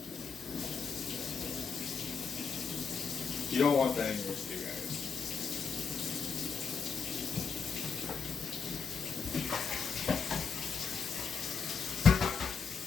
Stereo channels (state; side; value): quieter; right; 5.7 dB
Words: You don't want that in your stew, guys.